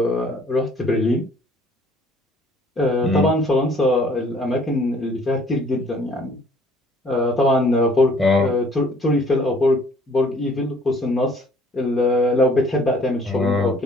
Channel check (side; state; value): both; normal; correlation 0.57